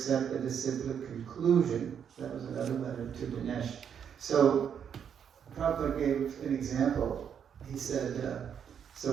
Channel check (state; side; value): quieter; left; 8.0 dB